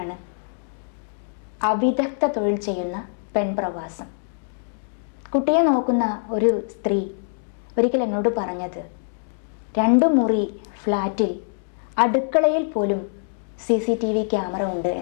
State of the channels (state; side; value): silent; right; digital silence